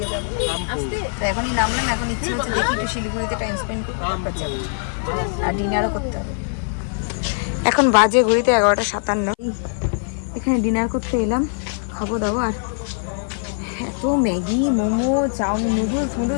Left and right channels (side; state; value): right; silent; 56 dB below the other